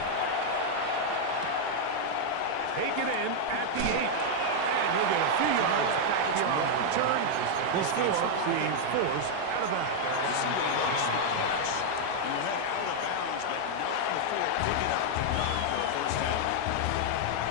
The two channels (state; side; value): different; both; correlation 0.00